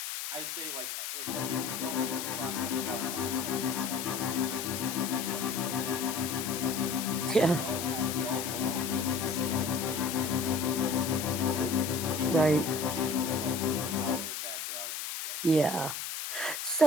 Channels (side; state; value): left; noise; hiss, 5 dB below the sound